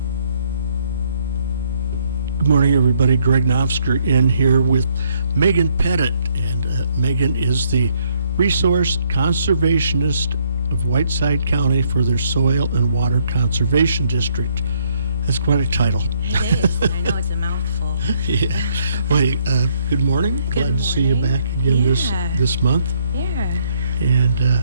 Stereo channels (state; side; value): inverted; both; correlation -0.70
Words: Good morning, everybody. Greg Naftzger in here with Meghan Pettit. And Meghan is the resource conservationist of Whiteside County for their Soil and Water Conservation District. That's quite a title. It is. I know it's a mouthful. Yeah. Well, good morning. Glad to see you back again this month. Yeah.